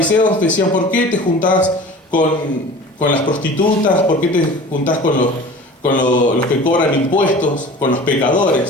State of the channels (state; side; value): normal; both; correlation 0.40